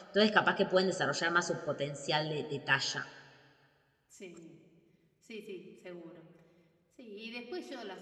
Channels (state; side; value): identical; both; correlation 1.00